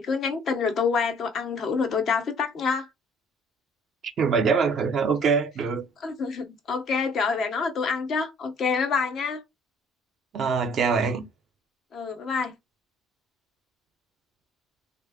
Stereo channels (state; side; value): normal; both; correlation 0.56